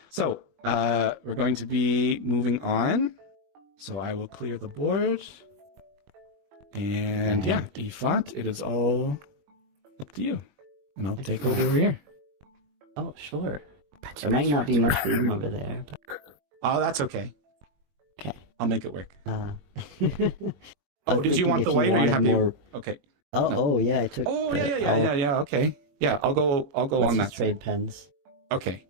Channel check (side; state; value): left; late; 21 ms